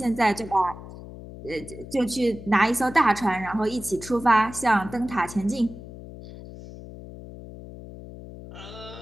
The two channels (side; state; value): left; noise; hum, 14 dB below the sound